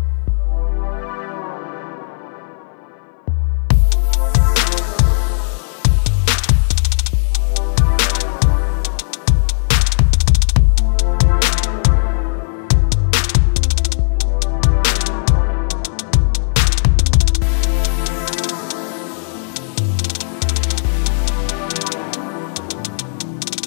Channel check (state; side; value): silent; right; 62 dB below the other